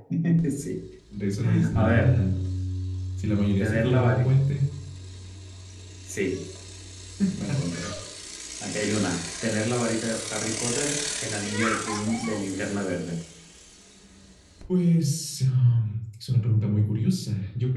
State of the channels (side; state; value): both; identical; correlation 1.00